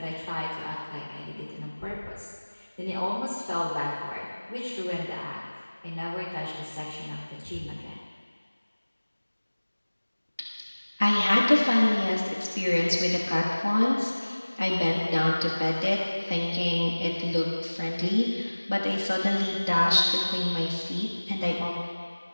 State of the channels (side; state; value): both; inverted; correlation -1.00